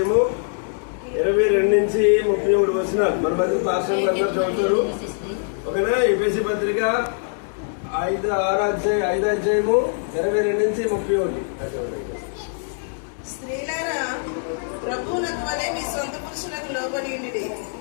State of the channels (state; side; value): silent; right; digital silence